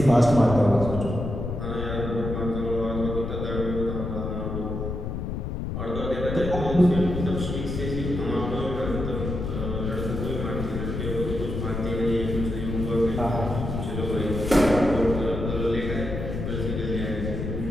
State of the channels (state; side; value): noise; left; rumble, 4 dB below the sound